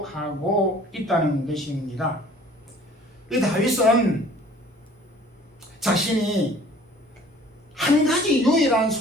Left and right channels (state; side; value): normal; both; correlation 0.51